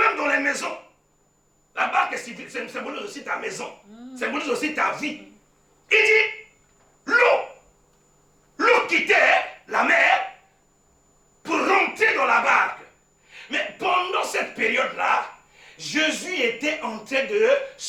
dans les maisons. La barque symbolise aussi ta maison, symbolise aussi ta vie. Il dit, l'eau quittait la mer pour rentrer dans la barque. Mais pendant cette période-là, Jésus était en train de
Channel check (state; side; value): identical; both; correlation 1.00